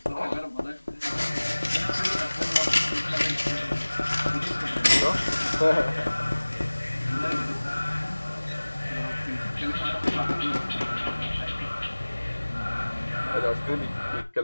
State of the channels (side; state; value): both; inverted; correlation -1.00